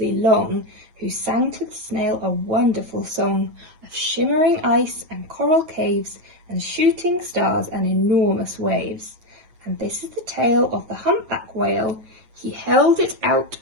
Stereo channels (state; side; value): late; left; 9.4 ms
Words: long, who sang to the snail a wonderful song of shimmering ice and coral caves and shooting stars and enormous waves. And this is the tale of the humpback whale. He held it out